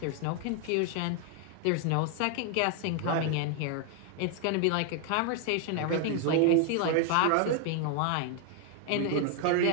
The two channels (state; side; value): different; both; correlation 0.00